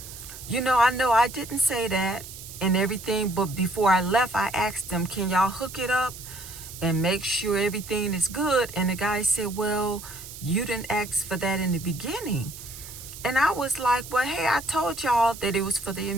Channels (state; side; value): noise; right; hiss, 13 dB below the sound